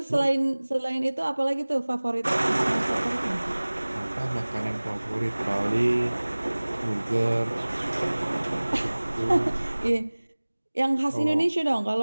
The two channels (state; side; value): inverted; both; correlation -1.00